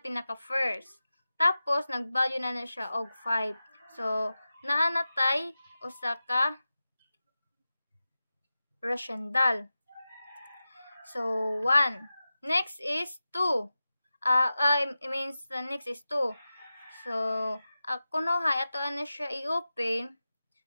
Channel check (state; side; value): inverted; both; correlation -0.94